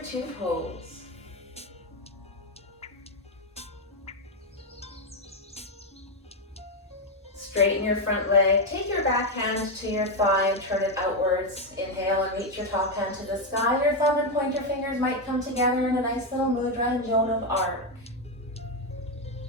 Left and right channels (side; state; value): both; normal; correlation 0.06